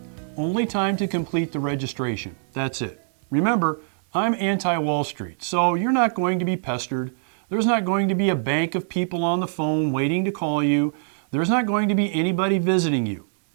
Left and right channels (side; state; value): left; silent; digital silence